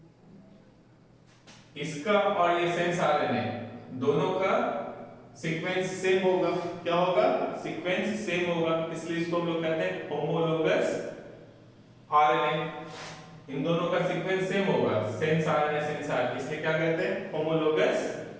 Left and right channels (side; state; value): both; identical; correlation 1.00